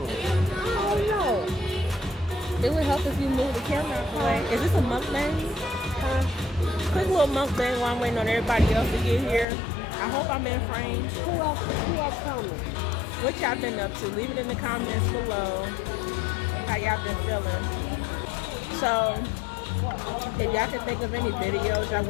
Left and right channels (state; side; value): drops out; right; at 9.5 s